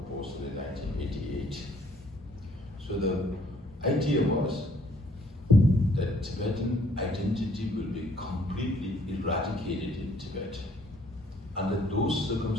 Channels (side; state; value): both; normal; correlation 0.63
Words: in 1988. So the idea was that Tibetan identity will be completely eradicated in Tibet. Under those